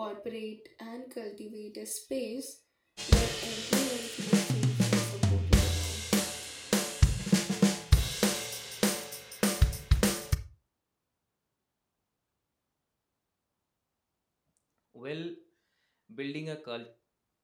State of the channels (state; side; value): identical; both; correlation 1.00